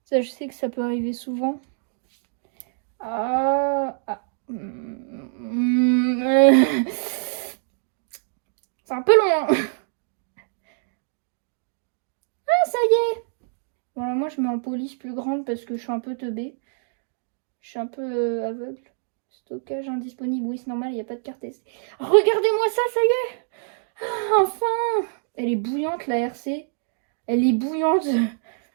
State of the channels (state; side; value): silent; left; digital silence